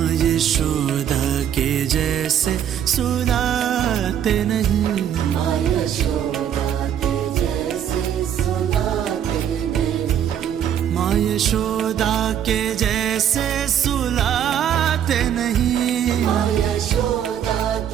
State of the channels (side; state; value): left; quieter; 9.6 dB